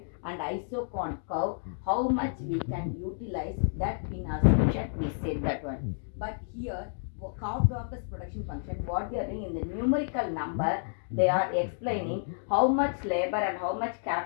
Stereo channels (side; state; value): right; silent; digital silence